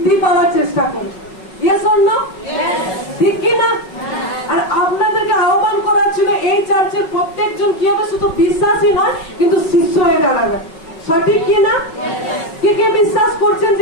পাওয়ার চেষ্টা করবে। Yes or no? ঠিক কি না? আর আপনাদেরকে আহ্বান করার ছিল এই চার্চের প্রত্যেকজন কি হবে, শুধু বিশ্বাসী নয় কিন্তু শিষ্য হয়ে দাঁড়াবে। সঠিক কি না? কে কে বিশ্বাস করছেন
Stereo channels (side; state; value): right; late; 5.4 ms